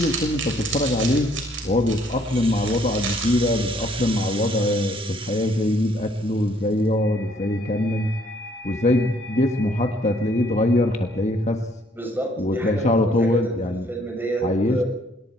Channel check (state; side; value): normal; both; correlation 0.65